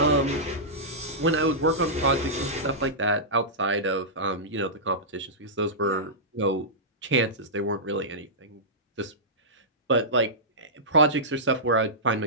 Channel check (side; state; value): both; normal; correlation -0.15